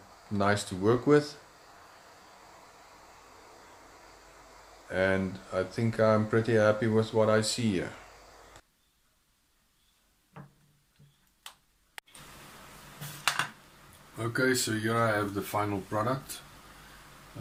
nice to work with. And I think I'm pretty happy with what I see here. Okay, so here I have the final product.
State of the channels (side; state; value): both; identical; correlation 1.00